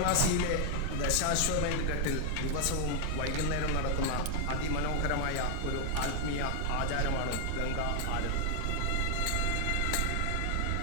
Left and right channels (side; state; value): both; different; correlation 0.00